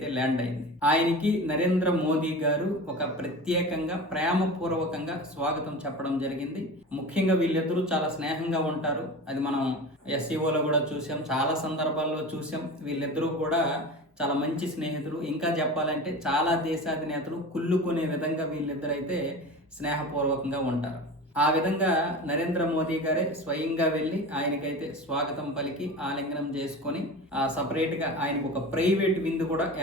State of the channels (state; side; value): normal; both; correlation 0.32